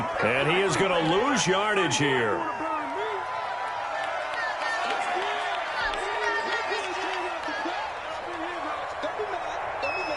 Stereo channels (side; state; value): both; identical; correlation 1.00